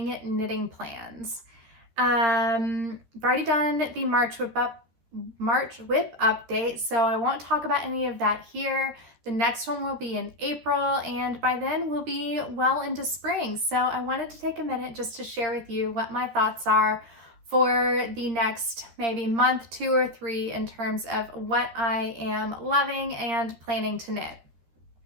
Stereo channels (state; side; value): late; left; 13 ms